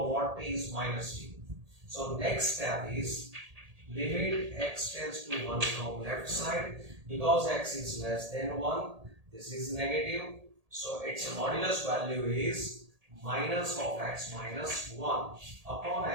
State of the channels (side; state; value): left; late; 1.8 ms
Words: what t is minus t. So next step is limit x tends to 1 from left side. Because x is less than 1, this is negative. So its modulus value is minus of x minus 1 upon